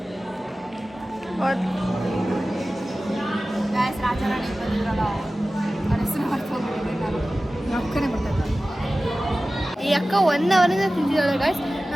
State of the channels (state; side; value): normal; both; correlation 0.96